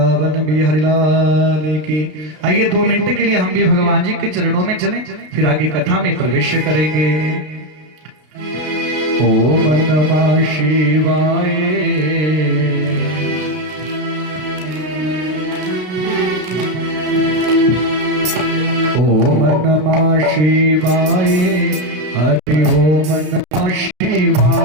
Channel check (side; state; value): left; late; 33 ms